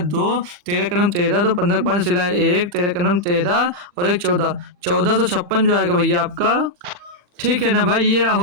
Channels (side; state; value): left; late; 40 ms